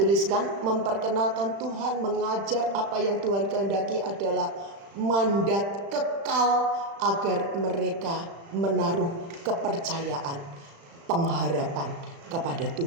memperkenalkan Tuhan, mengajar apa yang Tuhan kehendaki adalah mandat kekal agar mereka menaruh kepercayaan, pengharapan kepada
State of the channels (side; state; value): left; late; 35 ms